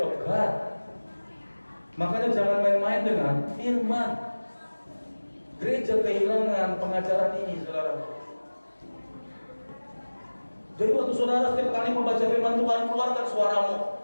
God. Makanya jangan main-main dengan firman. Gereja kehilangan pengajaran ini, saudara. Jadi waktu saudara setiap kali membaca firman Tuhan, keluarkan suaramu.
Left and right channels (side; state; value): both; inverted; correlation -1.00